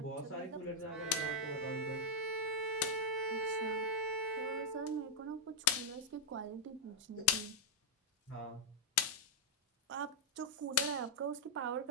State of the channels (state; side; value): normal; both; correlation -0.05